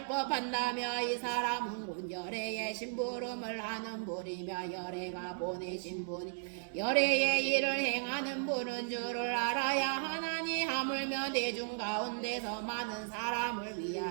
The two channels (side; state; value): left; silent; digital silence